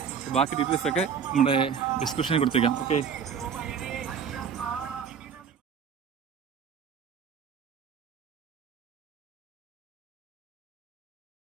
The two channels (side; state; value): left; quieter; 7.0 dB